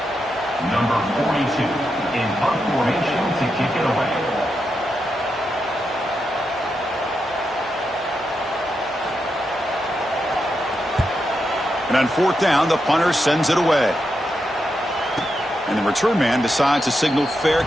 Number 42 in punt formation to kick it away. And on fourth down, the punter sends it away. And the return man decides to signal fair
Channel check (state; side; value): normal; both; correlation 0.85